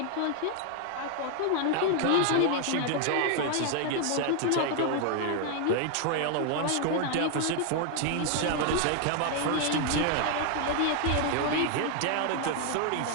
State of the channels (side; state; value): both; different; correlation 0.00